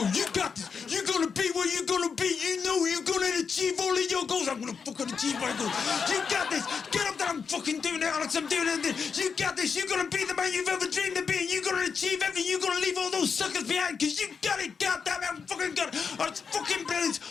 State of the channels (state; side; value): quieter; right; 5.9 dB